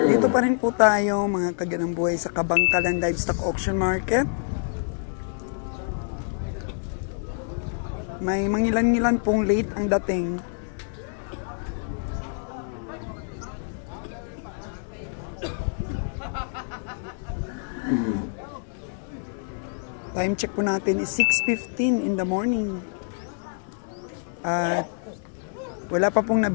Dito pa rin po tayo mga kaganang buhay sa Kabangkalan Livestock Auction Market. May mangilan-ngilan pong late ang dating. Time check po natin is 6:15 in the morning. At wala pa pong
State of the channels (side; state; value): right; silent; 61 dB below the other